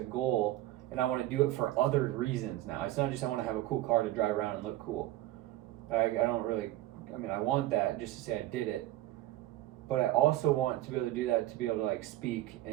and I want to do it for other reasons now. It's not just I want to have a cool car to drive around and look cool. I don't really. I mean, I want that just to say I did it. But I also want to be able to do that to be able to like speak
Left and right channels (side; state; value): left; quieter; 15.5 dB